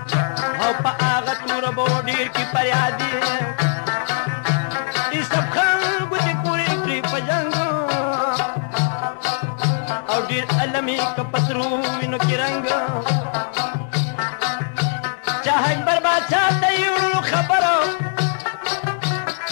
او پا آغا تورا بو دیر کی پریادی ای سب خلقو دی پوری کری پا جنگو او دیر علمی کپسروینو کی رنگو چاہک برباد چاہتا یو خبرو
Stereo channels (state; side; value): silent; right; digital silence